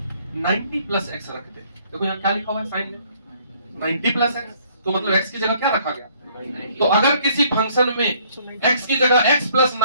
90 प्लस एक्स रख दे, देखो यहाँ क्या लिखा हुआ है साइन में 90 प्लस एक्स, तो मतलब x की जगह क्या रखा गया। तो अगर किसी फंक्शन में x की जगह x प्लस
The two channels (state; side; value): inverted; both; correlation -0.62